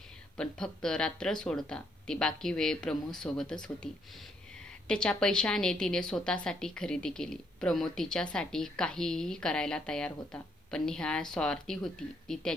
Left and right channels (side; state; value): both; normal; correlation 0.72